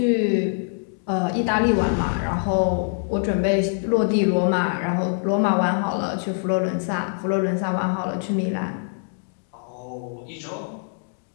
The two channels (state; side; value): silent; right; 62 dB below the other